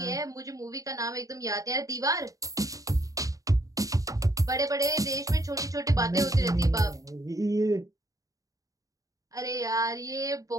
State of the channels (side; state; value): left; late; 0.16 ms